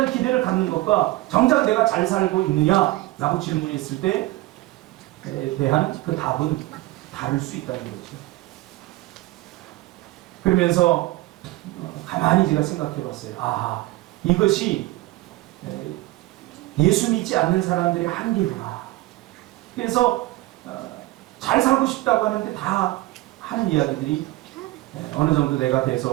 기대를 갖는 것과 정작 내가 잘 살고 있느냐라고 질문했을 때에 대한 그 답은 다를 수 있다는 거죠. 그러면서 가만히 제가 생각해 봤어요. 아, 이것이 예수 믿지 않는 사람들의 한계구나. 그래서 잘 살고 싶다고 하는데 다 하는 이야기들이 어느 정도 내가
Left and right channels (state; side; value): quieter; left; 18.6 dB